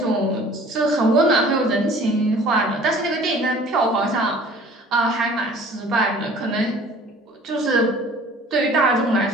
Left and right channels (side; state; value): both; normal; correlation 0.49